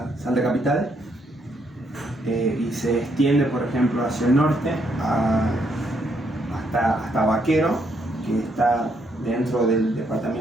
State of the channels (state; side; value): normal; both; correlation 0.74